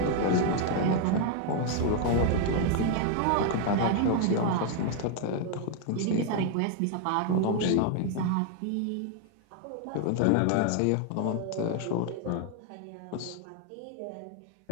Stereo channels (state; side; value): different; both; correlation 0.00